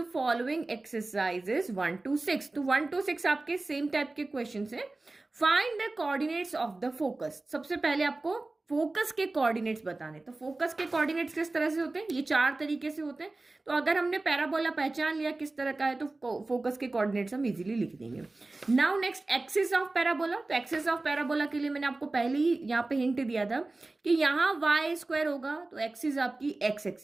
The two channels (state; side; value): quieter; left; 3.1 dB